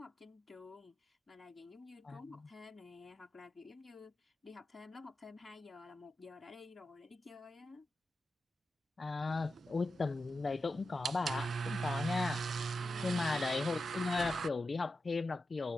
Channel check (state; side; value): normal; both; correlation 0.90